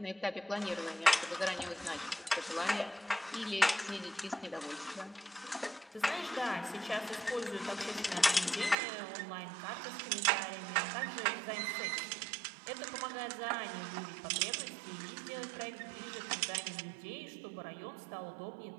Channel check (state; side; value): drops out; left; at 8.8 s